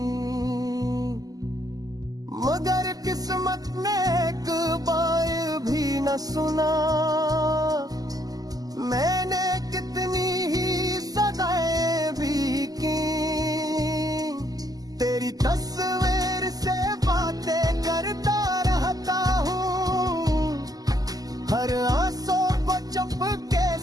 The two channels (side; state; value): left; late; 0.18 ms